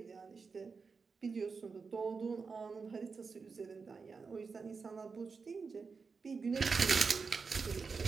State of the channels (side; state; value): left; quieter; 5.0 dB